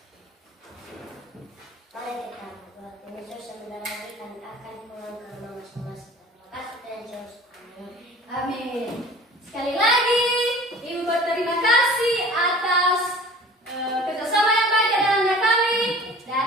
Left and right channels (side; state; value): both; normal; correlation 0.44